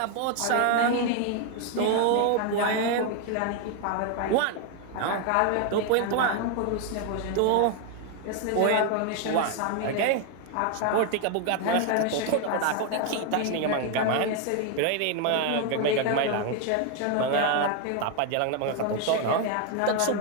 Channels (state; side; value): different; both; correlation 0.01